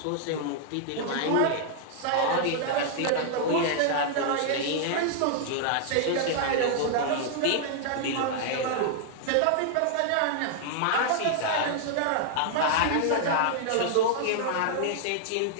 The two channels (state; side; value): different; both; correlation -0.01